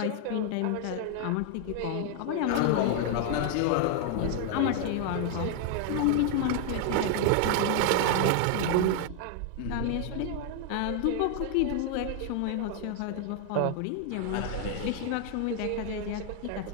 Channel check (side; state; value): both; different; correlation 0.00